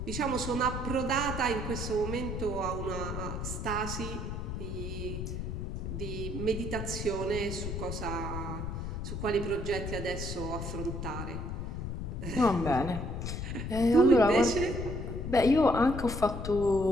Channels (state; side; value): noise; left; rumble, 5 dB below the sound